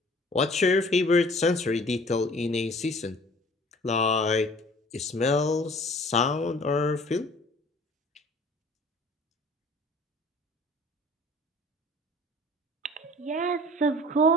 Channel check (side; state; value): both; normal; correlation 0.49